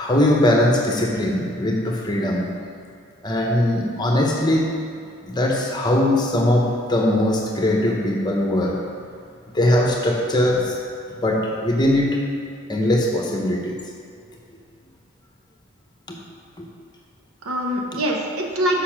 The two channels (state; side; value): normal; both; correlation 0.63